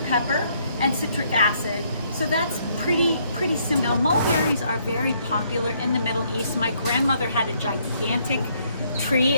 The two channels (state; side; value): inverted; both; correlation -0.69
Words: pepper, and citric acid. So that's pretty simple. Now, mulberries are very popular in the Middle East. My grandmother had a gigantic tree,